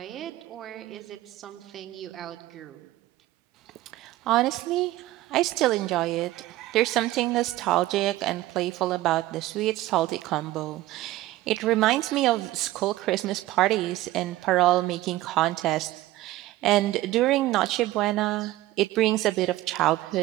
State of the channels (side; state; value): left; quieter; 16.3 dB